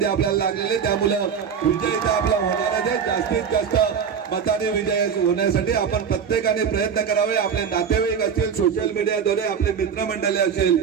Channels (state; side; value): quieter; left; 7.1 dB